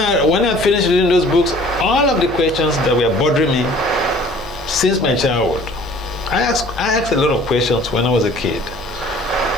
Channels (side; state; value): left; noise; hum, 16 dB below the sound